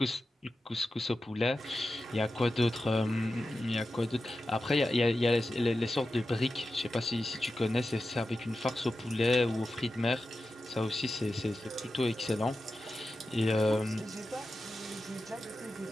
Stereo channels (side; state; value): both; normal; correlation 0.92